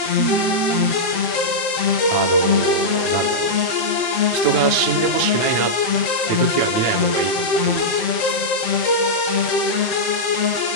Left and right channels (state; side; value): late; right; 7.7 ms